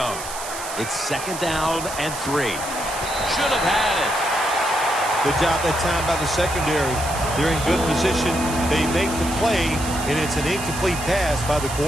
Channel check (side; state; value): right; noise; hiss, 9 dB below the sound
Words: It's 2nd down and 3. Should have had it. Good job that time by the secondary. They're in good position. They make the play, and it's an incomplete pass by the